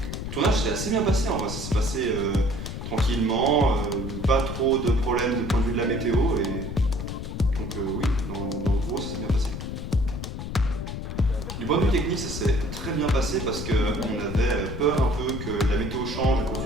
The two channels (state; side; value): noise; left; rumble, 7 dB below the sound